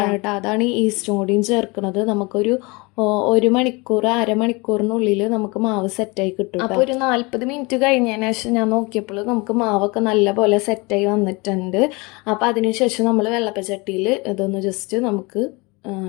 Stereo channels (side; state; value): right; quieter; 26.6 dB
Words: കേട്ടോ, അതാണ് ഈ ഈസ്റ്റും കൂടിയും ചേർക്കുന്നത്. നമുക്കൊരു 1 മണിക്കൂർ അരമണിക്കൂറിനുള്ളിൽ നമുക്ക് മാവ് സെറ്റായി കിട്ടും. അപ്പോൾ ഒരു 40 മിനിറ്റ് കഴിഞ്ഞതിന് ശേഷം ഞാൻ നോക്കിയപ്പോൾ നമുക്ക് മാവൊക്കെ നല്ലപോലെ സെറ്റായി വന്നിട്ടുണ്ട്. അപ്പോൾ അതിനുശേഷം നമ്മൾ വെള്ളപ്പച്ചട്ടിയിൽ ഇതൊന്ന് ജസ്റ്റ് നമുക്ക്